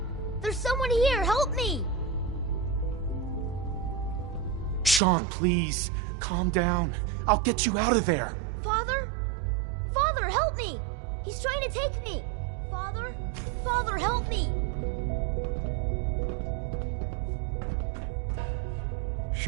There's someone here, help me! Sean, please. Calm down. I'll get you out of there. Father? Father, help me! He's trying to take me! Father? Father, help me!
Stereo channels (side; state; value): left; drops out; at 5.0 s